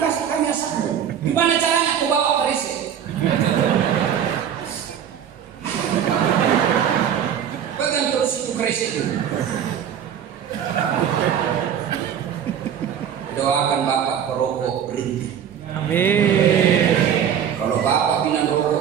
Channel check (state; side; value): quieter; left; 8.8 dB